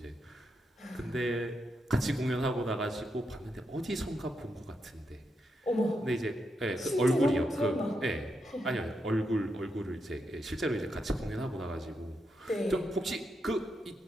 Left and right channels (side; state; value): both; normal; correlation 0.83